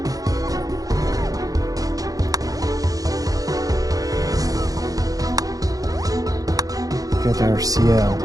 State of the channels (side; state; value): left; late; 0.17 ms